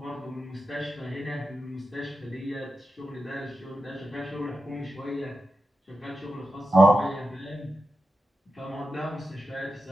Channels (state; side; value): normal; both; correlation 0.90